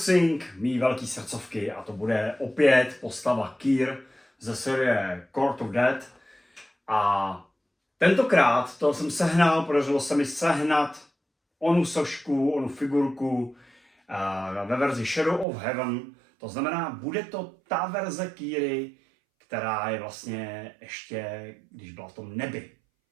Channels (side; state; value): left; drops out; at 15.5 s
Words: mý velký srdcovky a to bude opět postava Kyr ze série Court of Death a tentokrát to jsem sehnal, podařilo se mi sehnat onu sošku, onu figurku ve verzi Shadow of Heaven. To znamená, bude to ta verze Kyry, která je vlastně ještě, když byla v tom nebi.